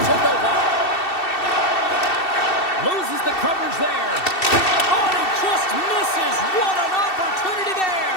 Novak. Loses the coverage there. Oh, he just misses. What an opportunity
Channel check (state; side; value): late; right; 2.7 ms